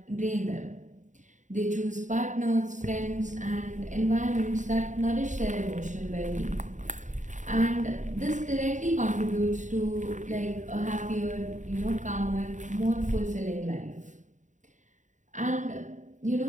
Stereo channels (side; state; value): left; late; 0.36 ms